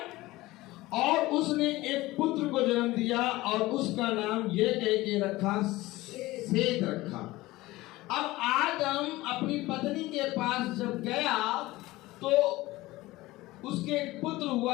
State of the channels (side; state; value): right; quieter; 18.8 dB